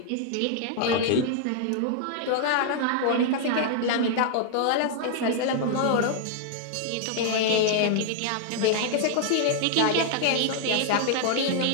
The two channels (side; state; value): both; different; correlation -0.01